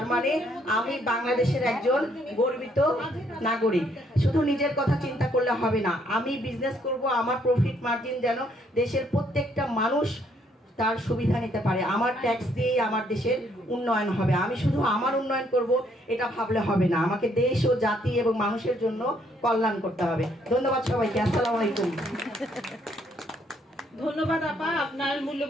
মানে আমি বাংলাদেশের একজন গর্বিত নাগরিক। শুধু নিজের কথা চিন্তা করলে হবে না, আমি বিজনেস করব, আমার প্রফিট মার্জিন যেন দেশের প্রত্যেকটা মানুষ তার সুবিধা নিতে পারে। আমার ট্যাক্স দিয়েই আমার দেশের উন্নয়ন হবে। আমি শুধু আমার উন্নয়ন করব এটা ভাবলে হবে না, আমাকে দেশ ও জাতি এবং মানুষের জন্য কল্যাণ করতে হবে। ধন্যবাদ সবাইকে, আসসালামু আলাইকুম। ধন্যবাদ আপা আপনার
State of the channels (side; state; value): both; normal; correlation 0.69